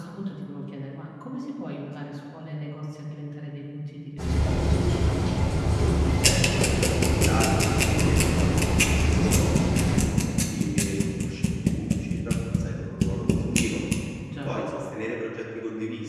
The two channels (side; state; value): both; identical; correlation 1.00